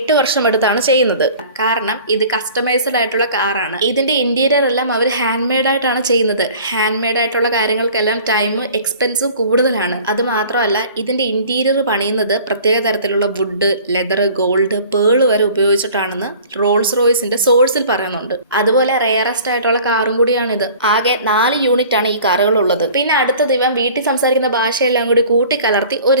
വർഷം എടുത്താണ് ചെയ്യുന്നത്. കാരണം ഇത് കസ്റ്റമൈസ്ഡ് ആയിട്ടുള്ള കാറാണ്. ഇതിന്റെ ഇന്റീരിയർ എല്ലാം അവർ ഹാൻഡ് മെയ്ഡ് ആയിട്ടാണ് ചെയ്യുന്നത്. ഹാൻഡ് മെയ്ഡ് ആയിട്ടുള്ള കാര്യങ്ങൾക്കെല്ലാം ടൈം എക്സ്പെൻസും കൂടുതലാണ്. അത് മാത്രമല്ല ഇതിന്റെ ഇന്റീരിയർ പണിയുന്നത് പ്രത്യേക തരത്തിലുള്ള വുഡ്, ലെതർ, ഗോൾഡ്, പേള് വരെ ഉപയോഗിച്ചിട്ടാണെന്ന് റോൾസ് റോയ്സിന്റെ സോഴ്സിൽ പറയുന്നുണ്ട്. അതുപോലെ റെയറസ്റ്റ് ആയിട്ടുള്ള കാറും കൂടിയാണിത്. ആകെ 4 യൂണിറ്റ് ആണ് ഈ കാറുകൾ ഉള്ളത്. പിന്നെ അടുത്തത് ഇവൻ വീട്ടിൽ സംസാരിക്കുന്ന ഭാഷയെല്ലാം കൂടി കൂട്ടിക്കലർത്തി ഒരു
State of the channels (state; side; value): inverted; both; correlation -0.47